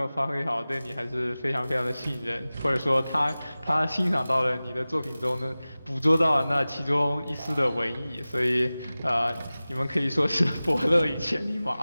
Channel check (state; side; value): inverted; both; correlation -0.98